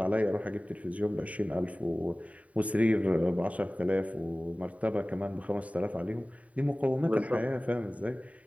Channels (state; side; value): late; left; 0.068 ms